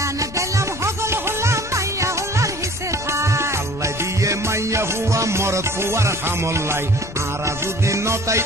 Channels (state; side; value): noise; left; rumble, 14 dB below the sound